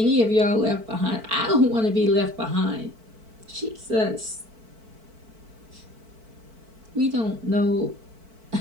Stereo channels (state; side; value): late; left; 4.5 ms